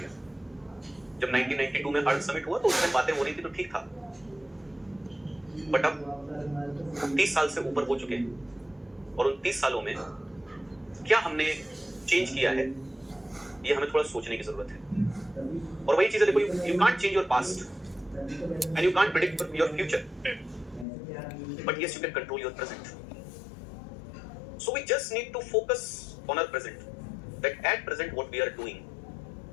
गया. जब 1992 में अर्थ समिट हुआ तो उसमें बातें हो रही थी तो ठीक था, बट अब 30 साल से ऊपर हो चुके हैं और उन 30 सालों में क्या हमने चेंज किया है, ये हमें थोड़ा सोचने की जरूरत है. और वही चीजें देखो, you can't change your past and you can't predict your future, but yes you can control your present. So we just need to focus on our present, that at present what we are doing.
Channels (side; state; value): right; drops out; at 20.9 s